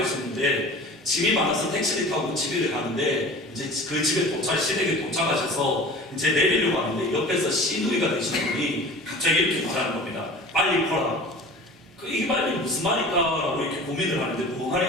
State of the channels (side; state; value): both; normal; correlation 0.40